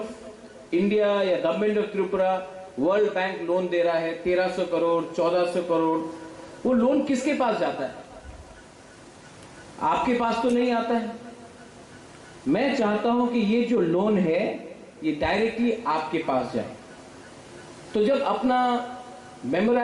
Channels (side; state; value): both; identical; correlation 1.00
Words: इंडिया या government of Tripura world bank loan दे रहा है 1300 करोड़ 1400 करोड़। वो लोन किसके पास जाता है? आपके पास तो नहीं आता है। मैं चाहता हूं कि ये जो लोन है ये डायरेक्टली आपके पास जाए। तो जब अपना